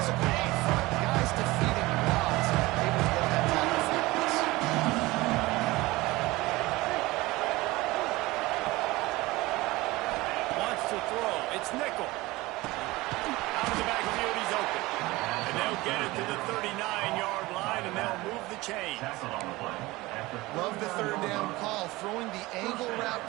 up front. The guys defeating odds. Able to get that tackle for us. Wants to throw. It's nickel. Out of the backfield, he's open. And they'll get it to the 39-yard line, and they'll move the chains. Love the 3rd down call. Throwing the angle route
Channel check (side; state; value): left; quieter; 20.4 dB